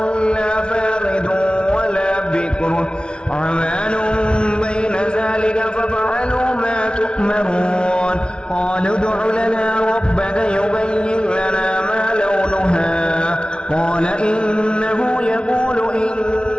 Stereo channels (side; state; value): right; late; 0.056 ms